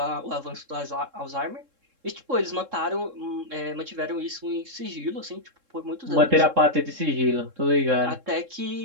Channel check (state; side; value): late; left; 3.7 ms